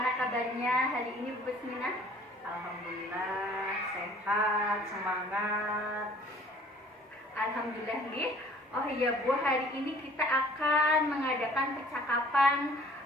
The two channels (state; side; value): normal; both; correlation 0.53